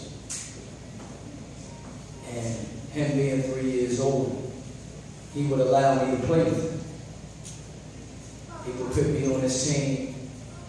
And him being 3 years old, he would allow me to play with him. He would put me on his team,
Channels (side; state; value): both; identical; correlation 1.00